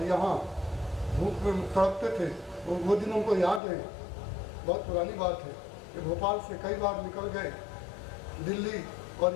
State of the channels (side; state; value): right; drops out; at 3.6 s